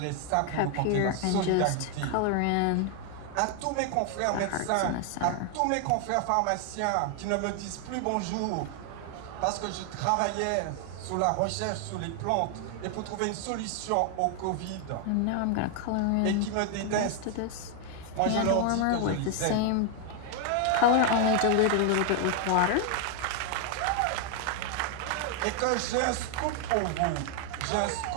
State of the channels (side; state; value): both; different; correlation 0.00